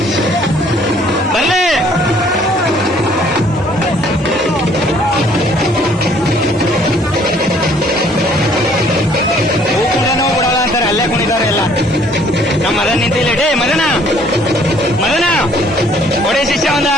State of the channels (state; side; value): normal; both; correlation 0.60